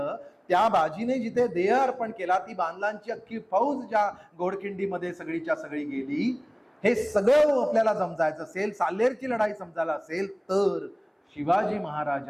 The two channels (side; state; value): both; identical; correlation 1.00